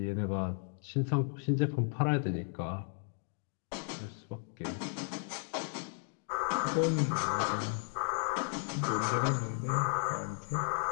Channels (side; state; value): right; silent; 55 dB below the other